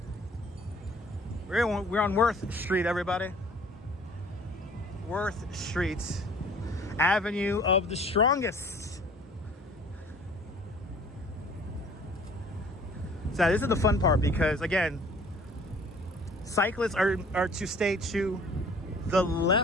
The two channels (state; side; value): normal; both; correlation 0.52